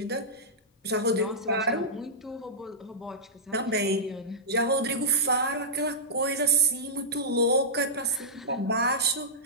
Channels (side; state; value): both; normal; correlation -0.14